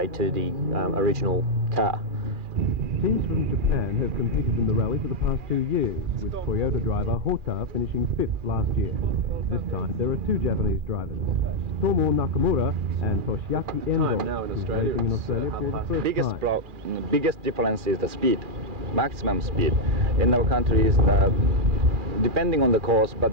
to the original car. Teams from Japan have competed in the rally for the past 2 years, with Toyota driver Hota finishing 5th last year. This time there are 2 Japanese drivers, Tomo Nakamura and Toshiaki Endo, now in who's Australia, racing in Australia for the first time. Biggest difference is the speed, maximum speed. In our country is depending on the course, but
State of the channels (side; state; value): left; late; 2.4 ms